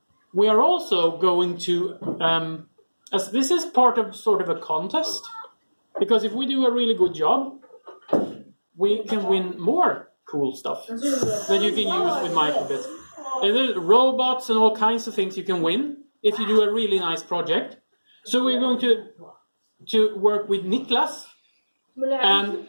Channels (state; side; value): inverted; both; correlation -1.00